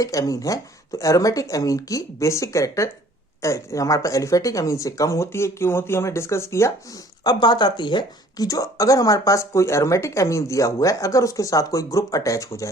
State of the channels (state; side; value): normal; both; correlation 0.55